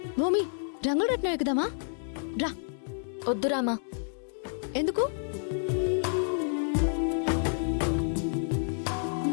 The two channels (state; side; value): silent; right; digital silence